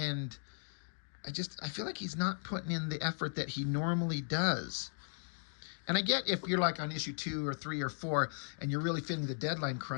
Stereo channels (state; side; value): silent; right; digital silence